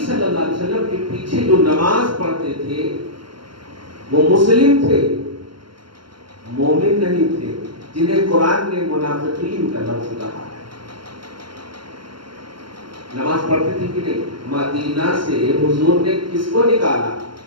اللہ علیہ وسلم کے پیچھے جو نماز پڑھتے تھے وہ مسلم تھے، مومن نہیں تھے، جنہیں قرآن نے منافقین کا لفظ کہا ہے۔ نماز پڑھتے تھے کہ نہیں؟ مدینہ سے حضور نے کس کو نکالا؟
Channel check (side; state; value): left; late; 0.73 ms